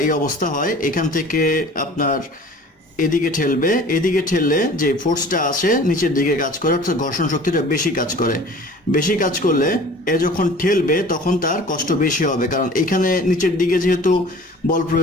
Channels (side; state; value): both; normal; correlation 0.45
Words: এই অবস্থা হয়, এখান থেকে আপনার এদিকে ঠেলবে, এদিকে ঠেললে যে ফোর্সটা আসে নিচের দিকে কাজ করে, অর্থাৎ ঘর্ষণ শক্তিটা বেশি কাজ করে। বেশি কাজ করলে এ যখন ঠেলবে তখন তার কষ্ট বেশি হবে, কারণ এখানে নিচের দিকে যেহেতু বল